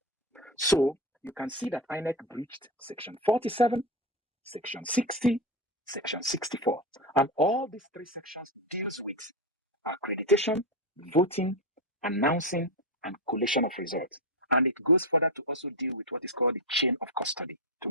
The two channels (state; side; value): normal; both; correlation 0.12